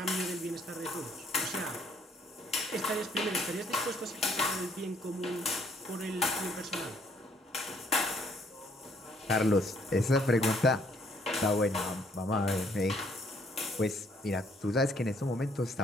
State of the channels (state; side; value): normal; both; correlation 0.66